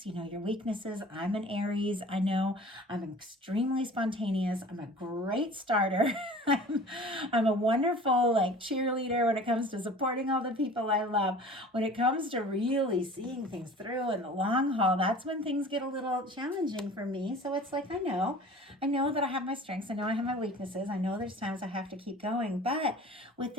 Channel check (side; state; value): both; normal; correlation 0.43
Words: your weaknesses. I'm an Aries. I know I'm extremely spontaneous. I'm a great starter. I'm a wonderful cheerleader when it comes to supporting all the people I love. When it comes to really seeing things through in the long haul, that's when things get a little challenging for me. So it's like, I know that I have my strengths. I know I have my weaknesses. I know there's times I have to keep going. But with